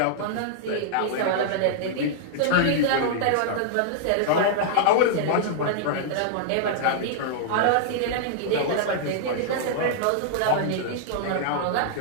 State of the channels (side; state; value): both; different; correlation -0.01